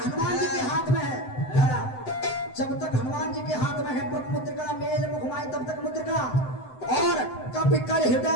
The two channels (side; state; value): right; late; 7.9 ms